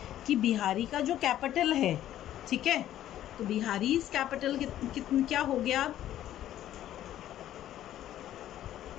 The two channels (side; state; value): right; quieter; 12.3 dB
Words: कि बिहारी का जो कैपिटल है, ठीक है, तो बिहारी कैपिटल क्या हो गया, अब